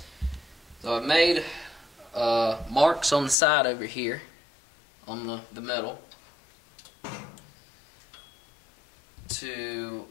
So I've made marks on the side over here on the metal to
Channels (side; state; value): right; drops out; at 3.4 s